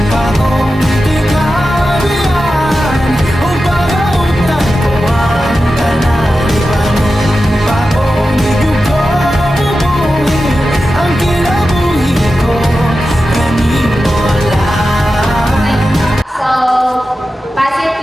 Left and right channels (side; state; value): both; normal; correlation 0.92